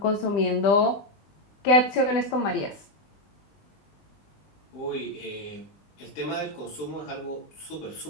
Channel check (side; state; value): right; late; 20 ms